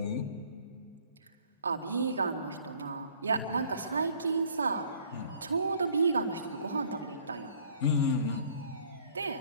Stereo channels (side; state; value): both; inverted; correlation -0.57